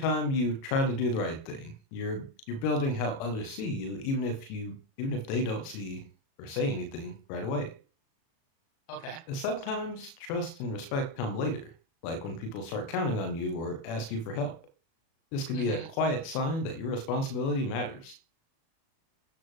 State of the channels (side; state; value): right; late; 36 ms